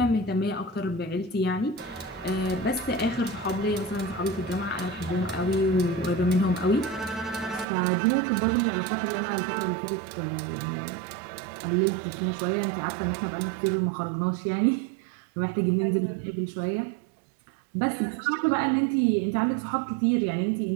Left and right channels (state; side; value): drops out; left; at 7.7 s